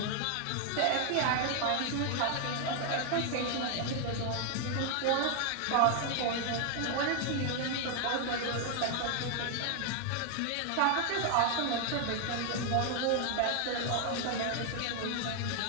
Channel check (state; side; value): different; both; correlation 0.00